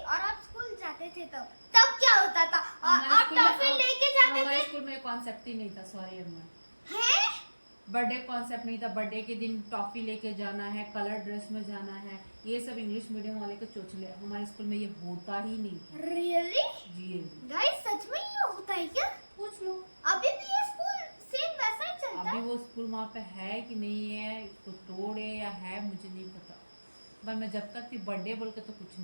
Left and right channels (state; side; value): inverted; both; correlation -1.00